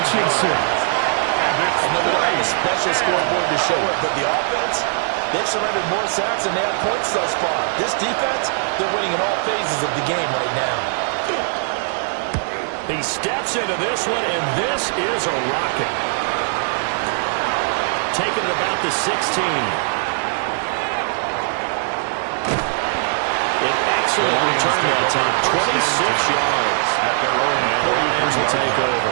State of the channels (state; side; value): silent; left; digital silence